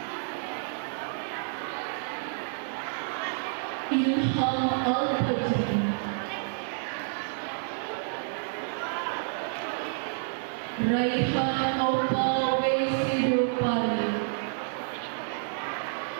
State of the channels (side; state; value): left; silent; digital silence